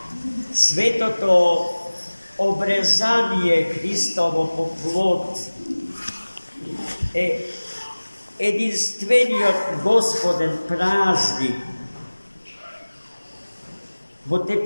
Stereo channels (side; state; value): both; inverted; correlation -1.00